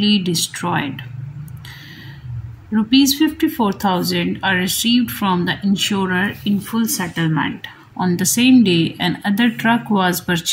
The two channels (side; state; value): both; identical; correlation 1.00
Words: destroyed. Rupees 54,000 are received from the insurer in full settlement. On the same day, another truck was